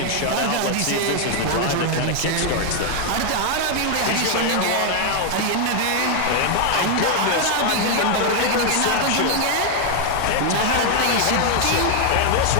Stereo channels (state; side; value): different; both; correlation 0.00